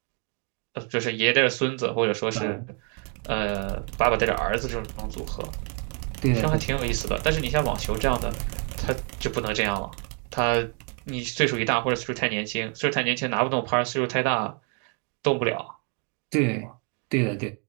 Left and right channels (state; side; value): quieter; left; 38.0 dB